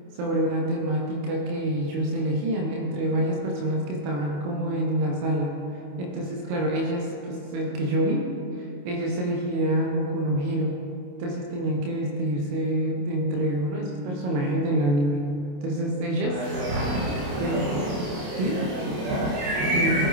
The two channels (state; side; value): late; left; 28 ms